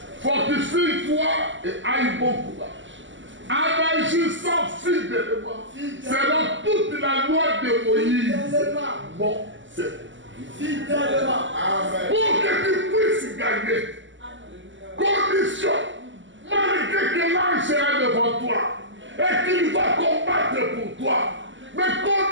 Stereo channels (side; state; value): left; late; 0.55 ms